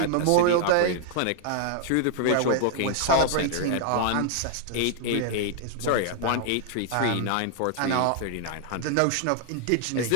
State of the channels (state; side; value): different; both; correlation 0.00